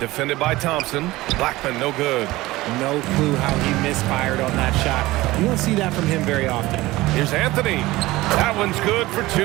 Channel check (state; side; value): quieter; left; 18.7 dB